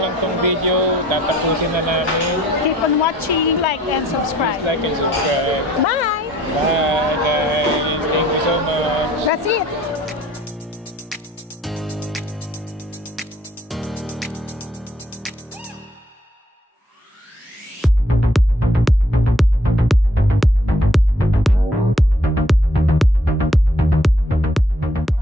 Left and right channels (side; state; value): both; normal; correlation 0.62